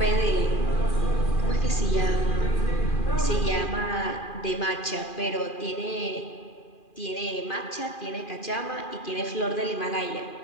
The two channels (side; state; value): right; late; 2.4 ms